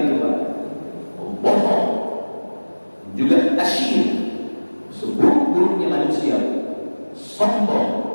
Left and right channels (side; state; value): both; inverted; correlation -1.00